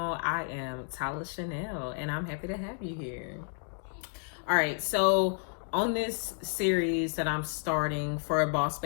I am Tyler Chanel, and I'm happy to have you here. All right, so on this series that I'm starting for Boss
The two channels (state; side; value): silent; right; 56 dB below the other